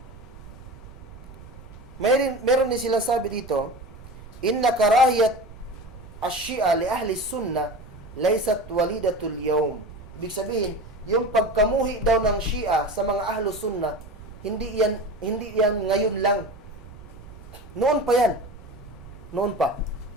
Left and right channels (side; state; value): right; noise; rumble, 17 dB below the sound